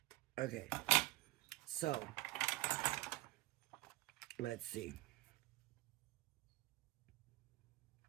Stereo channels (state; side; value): quieter; left; 20.0 dB